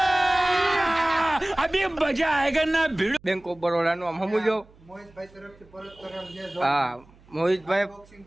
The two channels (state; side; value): noise; right; hum, 27 dB below the sound